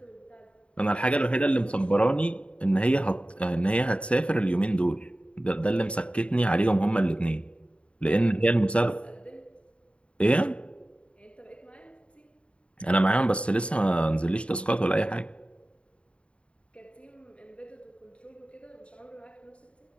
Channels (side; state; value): right; late; 0.059 ms